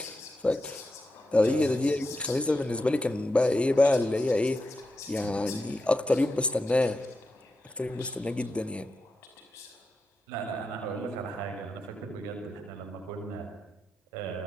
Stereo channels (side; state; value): both; normal; correlation 0.87